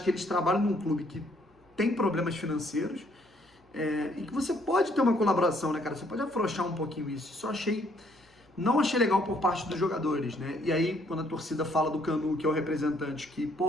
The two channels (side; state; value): both; normal; correlation 0.66